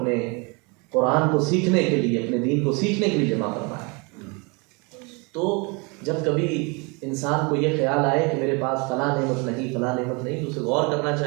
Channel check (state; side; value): quieter; left; 30.1 dB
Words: قرآن کو سیکھنے کے لیے، اپنے دین کو سیکھنے کے لیے جمع فرمایا۔ تو جب کبھی انسان کو یہ خیال آئے کہ میرے پاس فلاں نعمت نہیں، فلاں نعمت نہیں، تو اسے غور کرنا